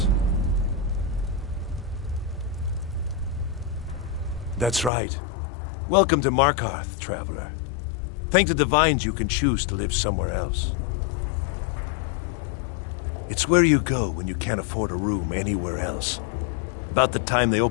That's right. Welcome to Markarth, traveler. Thank the Divines you can choose to live somewhere else. It's where you go when you can't afford a room anywhere else. About the time they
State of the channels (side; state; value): right; drops out; at 4.9 s